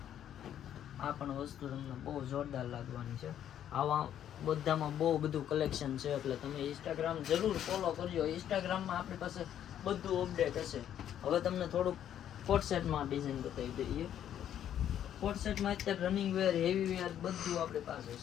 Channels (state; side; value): quieter; right; 10.3 dB